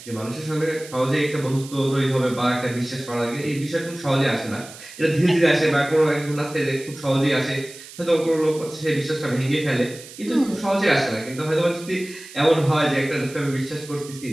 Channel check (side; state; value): right; noise; hiss, 17 dB below the sound